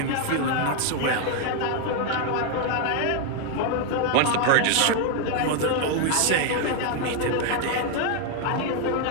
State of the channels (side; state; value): both; different; correlation 0.01